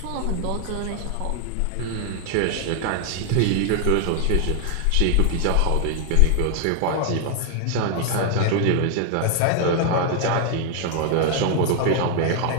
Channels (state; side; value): different; both; correlation 0.00